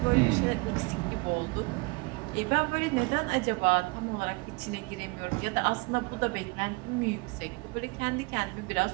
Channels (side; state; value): left; quieter; 26.9 dB